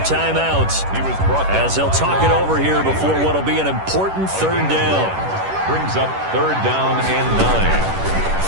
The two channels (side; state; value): left; late; 10 ms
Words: as they'll talk it over here before what will be an important 3rd down. Brings up 3rd down and 9.